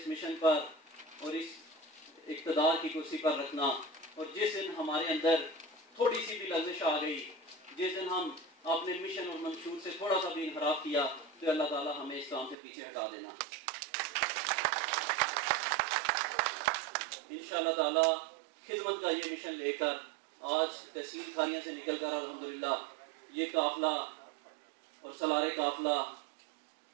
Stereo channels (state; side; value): drops out; left; at 12.6 s